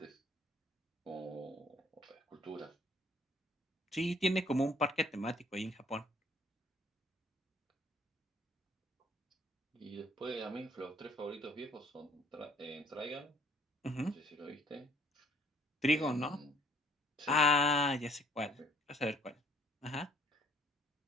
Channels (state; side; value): normal; both; correlation 0.60